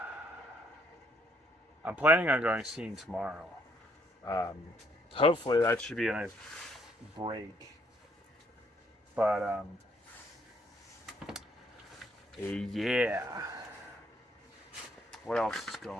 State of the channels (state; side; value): normal; both; correlation 0.69